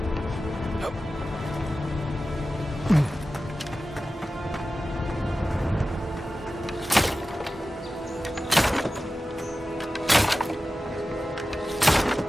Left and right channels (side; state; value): both; normal; correlation 0.95